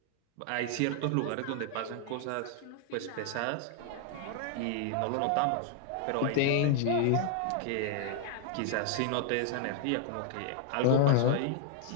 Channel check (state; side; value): different; both; correlation 0.00